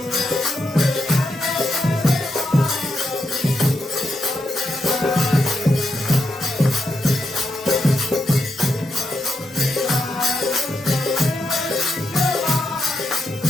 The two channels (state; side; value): normal; both; correlation 0.82